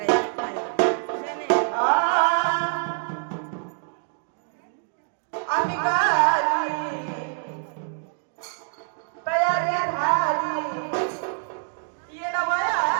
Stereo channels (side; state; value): left; silent; 61 dB below the other